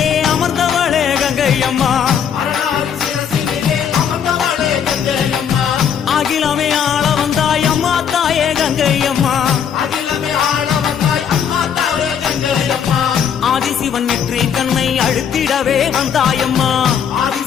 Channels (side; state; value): right; quieter; 8.0 dB